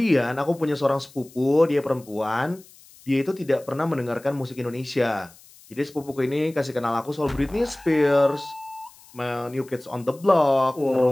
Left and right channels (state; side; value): noise; left; hiss, 24 dB below the sound